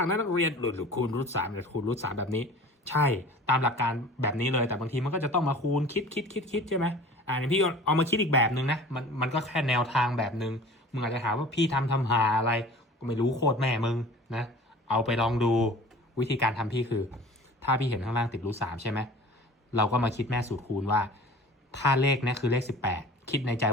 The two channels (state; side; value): normal; both; correlation 0.43